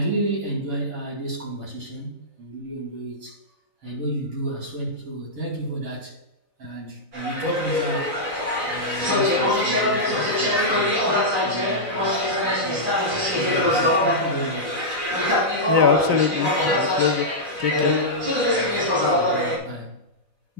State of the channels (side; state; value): left; late; 3.9 ms